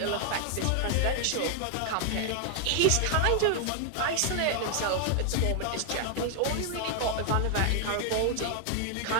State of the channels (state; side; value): different; both; correlation 0.00